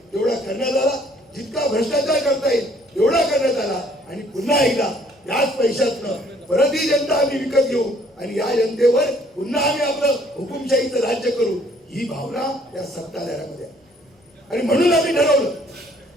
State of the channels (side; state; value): both; normal; correlation 0.61